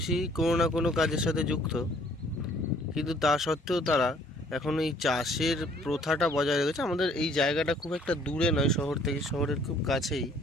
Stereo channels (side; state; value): both; normal; correlation 0.59